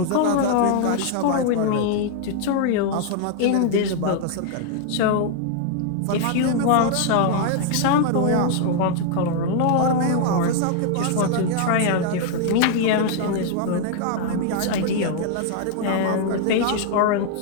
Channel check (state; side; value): different; both; correlation 0.00